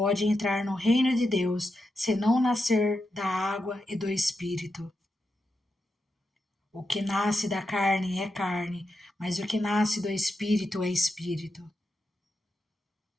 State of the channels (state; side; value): normal; both; correlation 0.87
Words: entrar no reino de Deus se não nascer da água e do Espírito. O que nasce da carne é carne, mas o que nasce do Espírito é Espírito.